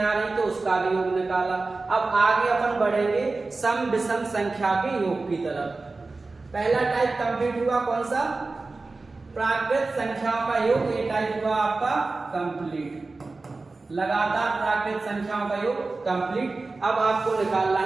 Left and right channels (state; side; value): quieter; left; 3.6 dB